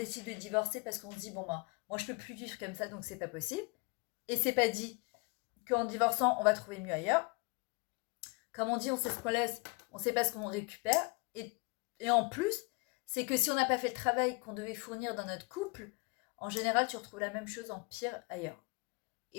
de divorcer parce qu'on se dit, bon, bah, moi, je peux plus vivre comme ça, donc c'est pas possible. Et c'est pas dit qu'en divorçant, on va trouver mieux ailleurs. Comme on dit, on sait ce qu'on laisse, on sait pas ce qu'on récupère. Et en plus, c'est que si on n'a pas fait le travail qu'on devait fournir dans notre couple, en général, tu retrouves la même chose en pire ailleurs.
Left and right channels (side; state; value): right; quieter; 29.4 dB